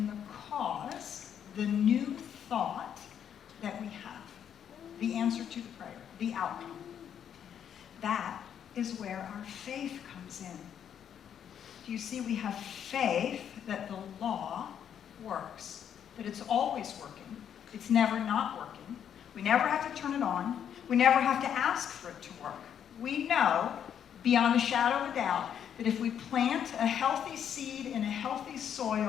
the cause, the new thought that we have. The answer to the prayer, the outcome. That is where our faith comes in. Do you see? We have faith that the law works, that it's always working. It's never not working. We never have to turn it on. We never have to ask for it to work. We know, beyond a shadow of a doubt, that if we plant a healthy seed in a healthy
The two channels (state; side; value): quieter; right; 8.9 dB